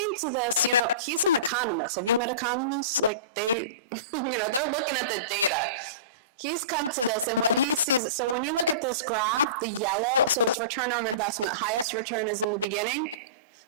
to this, he's an economist. Have you met economists? Like they're looking at the data. He's come to this, and what he sees, so when you look at this graph, the yellow, so it's return on investment, highest return is in the beginning.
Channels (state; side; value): inverted; both; correlation -0.31